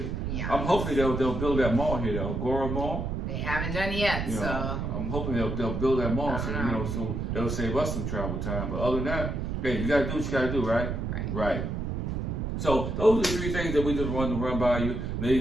Yeah. I'm hoping they'll build that mall here, the Agora Mall. They haven't done it yet, so I'm hoping they'll build that mall, so it'll save us some travel time. But other than that, hey, you gotta do what you gotta do, right? Right. So those are the three things that we just wanted to run by you. Now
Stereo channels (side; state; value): right; noise; rumble, 2 dB below the sound